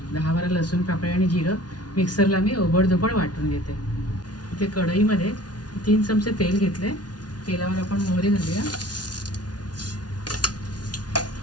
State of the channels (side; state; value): right; late; 0.69 ms